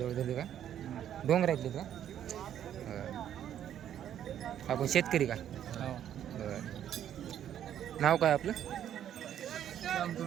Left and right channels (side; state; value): left; quieter; 10.3 dB